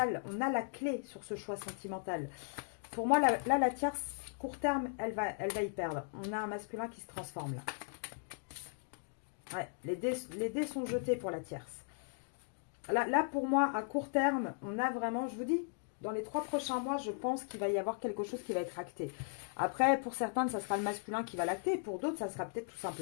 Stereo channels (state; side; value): silent; right; digital silence